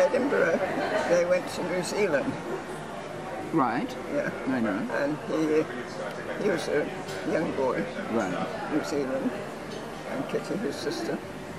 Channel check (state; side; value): identical; both; correlation 1.00